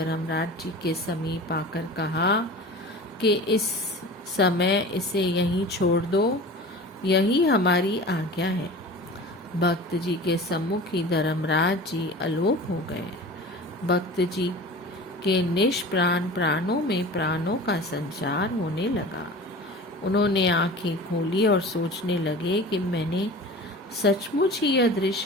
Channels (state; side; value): normal; both; correlation 0.37